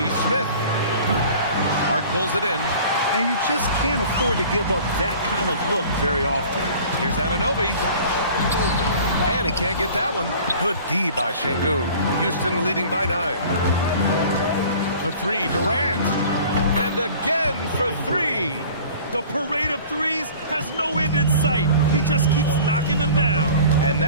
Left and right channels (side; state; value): both; inverted; correlation -0.45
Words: Smith. Hart pulls it in. And you just can't afford to give up that kind of look very often. Here's Anunoby. And he can't get that one. Good D by Şengün. Houston leading by 9. For 3, Durant. And again for 3. The parade of threes has no end in sight. He just keeps knocking them down. And